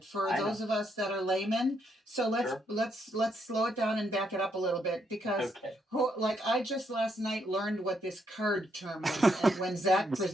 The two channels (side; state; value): both; normal; correlation 0.76